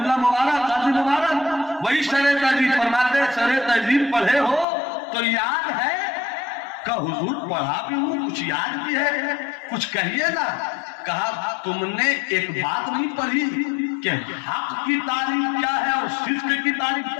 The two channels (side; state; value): right; drops out; at 4.7 s